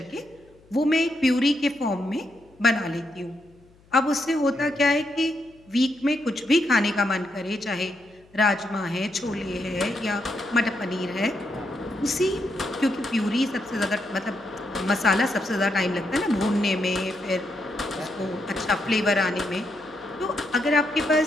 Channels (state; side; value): noise; left; hum, 29 dB below the sound